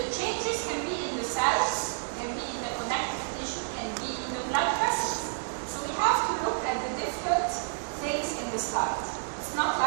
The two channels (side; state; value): left; silent; digital silence